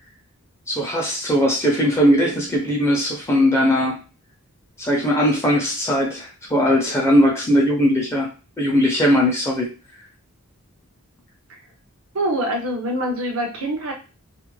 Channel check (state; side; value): normal; both; correlation 0.57